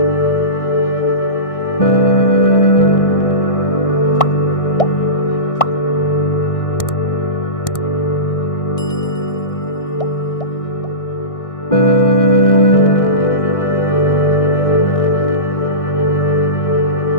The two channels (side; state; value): right; late; 1.6 ms